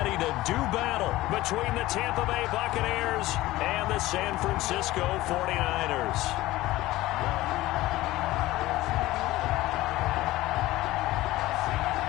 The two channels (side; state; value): right; quieter; 17.4 dB